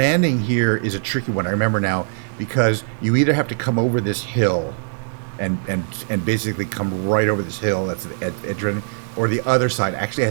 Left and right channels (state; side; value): silent; left; 60 dB below the other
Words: here is a tricky one. I remember now, because you either have to come over this hill and basically come right over this hill, that's the edge, or the other side actually